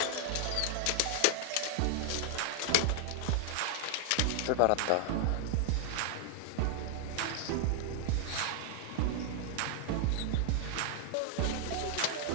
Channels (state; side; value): different; both; correlation 0.00